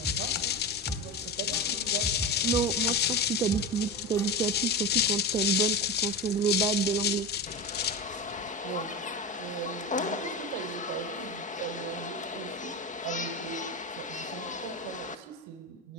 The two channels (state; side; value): normal; both; correlation 0.21